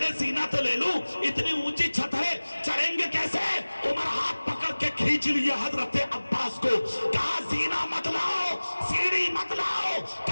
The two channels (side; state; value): both; inverted; correlation -1.00